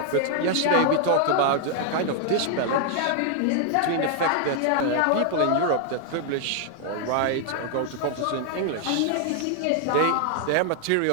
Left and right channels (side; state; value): both; different; correlation 0.00